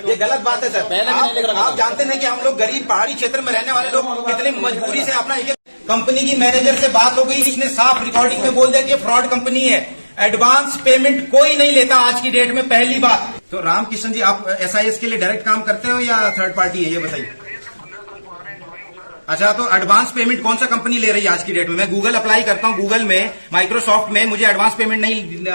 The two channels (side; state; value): both; inverted; correlation -1.00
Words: ये गलत बात है सर। आप जानते नहीं कि हम लोग गरीब पहाड़ी क्षेत्र में रहने वाले लोग कितनी मजबूरी से अपना कंपनी की मैनेजर से बात हो गई, इसने साफ रिकॉर्डिंग में बोल दिया कि फ्रॉड कंपनी है, एडवांस पेमेंट कोई नहीं लेता आज की डेट में, पहली बात। तो रामकिशन जी, आप एसआईएस के लिए डायरेक्ट काम करते हो या थर्ड पार्टी है, ये बताइए। अच्छा, तो एडवांस पेमेंट कौन सा कंपनी ले रही है आज की डेट में? मैं गूगल अप्लाई करता हूँ, गूगल में, माइक्रोसॉफ्ट में मुझे एडवांस पेमेंट